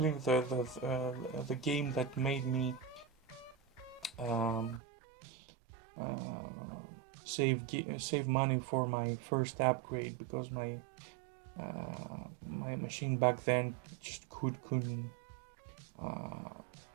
the game that made me save money for my first upgrade, because my machine back then just couldn't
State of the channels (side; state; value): left; drops out; at 4.8 s